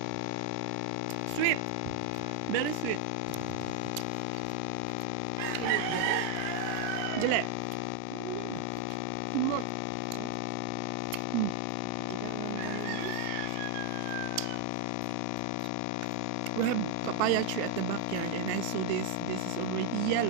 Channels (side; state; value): both; different; correlation 0.01